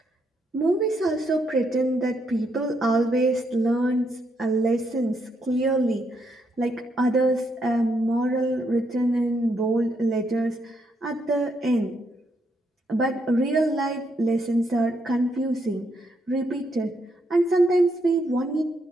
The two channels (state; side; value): normal; both; correlation 0.77